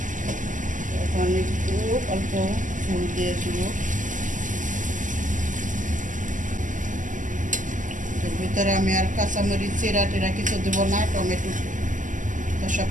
এখন একটু অল্প ফুল দিয়ে দেব। এর ভিতরে আমি আর কাঁচামরিচ চিরা টিরা কিছু দেবো না, টমেটো তো সব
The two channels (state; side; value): late; left; 0.37 ms